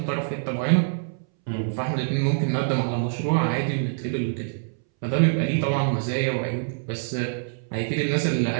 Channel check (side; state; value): left; silent; 62 dB below the other